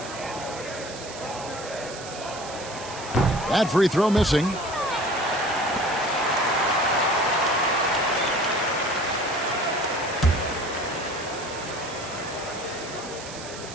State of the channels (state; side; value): noise; right; hiss, 13 dB below the sound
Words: That free throw missing.